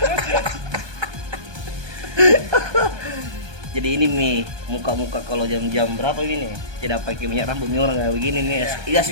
Jadi ini nih muka-muka kalau jam-jam berapa ini? Tidak pakai minyak rambut nih orang kayak begini nih. Iya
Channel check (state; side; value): late; left; 1.2 ms